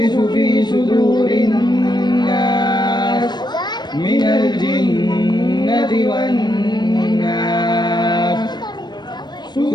في صدور الناس من الجنة والناس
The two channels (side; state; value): right; late; 0.21 ms